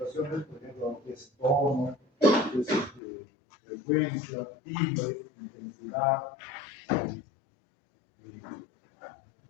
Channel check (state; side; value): drops out; right; at 3.0 s